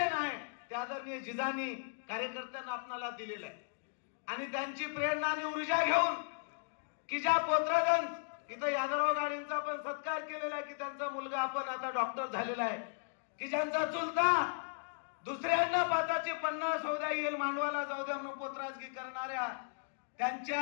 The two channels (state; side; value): silent; right; digital silence